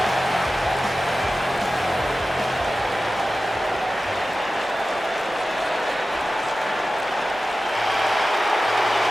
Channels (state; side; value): normal; both; correlation 0.95